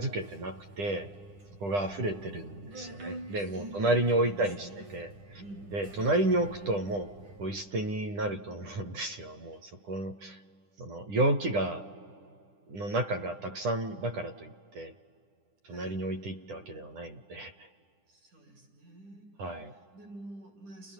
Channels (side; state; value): left; late; 10 ms